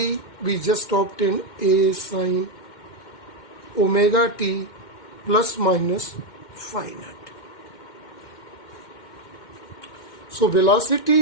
we just obtained a sine omega t plus minus phi naught. So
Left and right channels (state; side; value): late; right; 2.1 ms